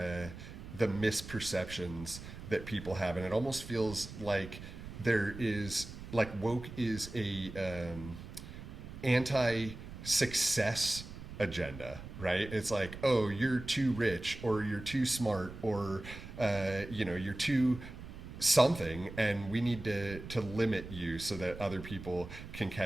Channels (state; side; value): noise; right; rumble, 12 dB below the sound